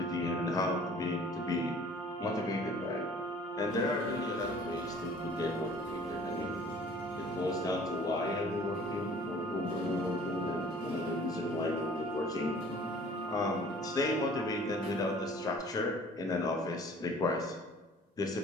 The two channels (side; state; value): both; normal; correlation 0.50